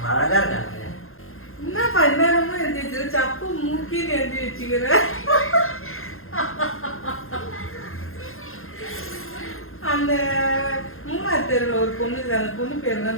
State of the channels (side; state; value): right; late; 0.61 ms